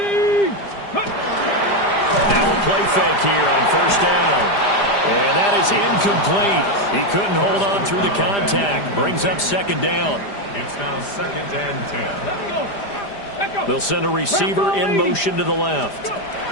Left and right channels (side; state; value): right; late; 5.0 ms